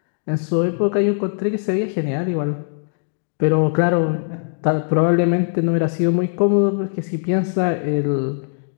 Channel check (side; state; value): right; silent; digital silence